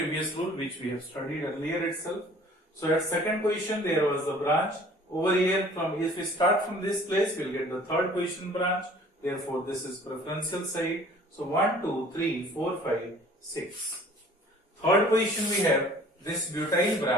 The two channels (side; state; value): both; normal; correlation 0.51